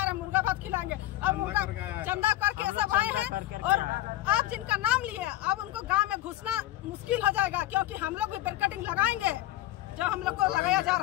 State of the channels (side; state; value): right; quieter; 15.3 dB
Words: रहे, मुर्गा भात खिलाएंगे, अब मुर्गा चंदा करके सब आए हैं। और आप जिनका नाम लिए अब उनको गांव में घुसना मुश्किल हो जाएगा, क्योंकि हम लोग भी बैरिकेडिंग लगाएंगे जो हम लोग को लगाया जा